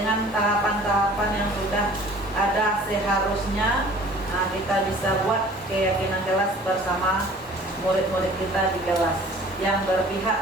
tahapan-tahapan yang sudah ada seharusnya. Nah, kita bisa buat keyakinan kelas bersama murid-murid kita di kelas yang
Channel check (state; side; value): normal; both; correlation 0.49